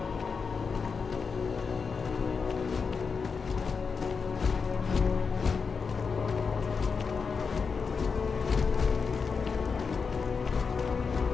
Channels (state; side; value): quieter; right; 5.4 dB